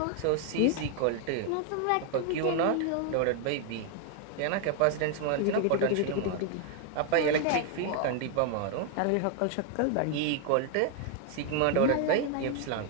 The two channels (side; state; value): both; different; correlation 0.00